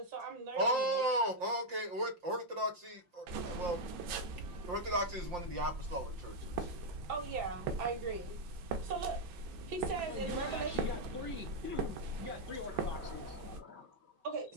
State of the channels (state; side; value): late; left; 5.7 ms